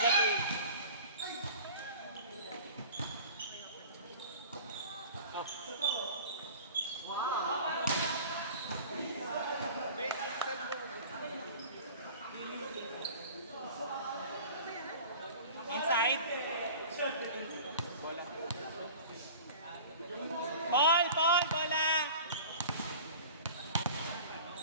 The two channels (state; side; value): inverted; both; correlation -0.40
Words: to eh. Inside. Paul, bola.